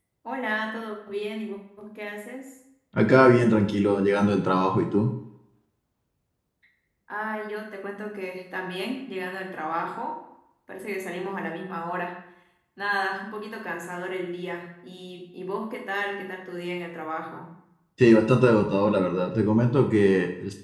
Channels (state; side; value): identical; both; correlation 1.00